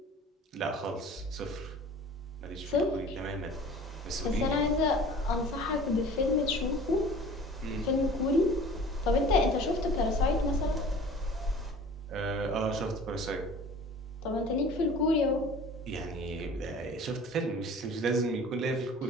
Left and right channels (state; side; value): normal; both; correlation 0.44